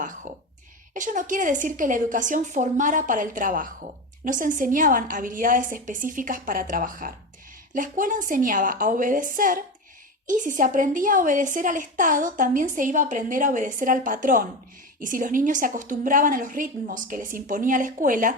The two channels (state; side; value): normal; both; correlation 0.22